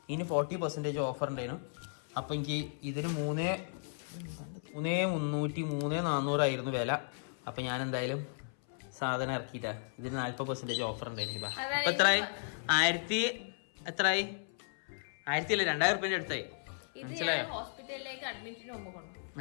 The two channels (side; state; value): right; silent; 54 dB below the other